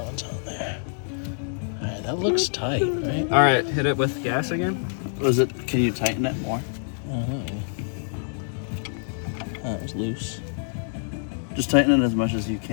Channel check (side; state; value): right; silent; digital silence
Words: what's on there. Alright, that looks tight, right? All right. Hit it with gas again. Was it? Can you tighten it more? That was loose. Just tighten it as much as you